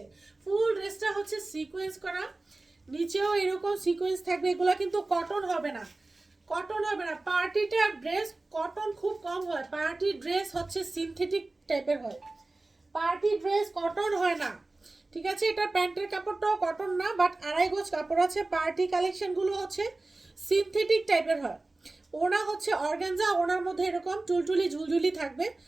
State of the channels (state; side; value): quieter; left; 3.1 dB